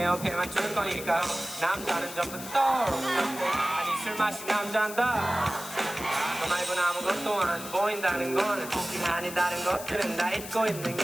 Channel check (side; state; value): left; noise; hiss, 11 dB below the sound